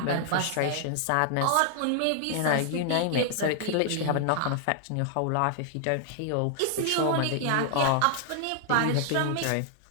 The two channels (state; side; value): different; both; correlation 0.00